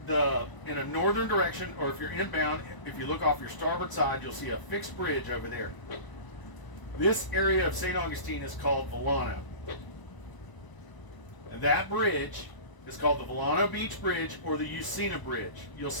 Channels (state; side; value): late; right; 1.0 ms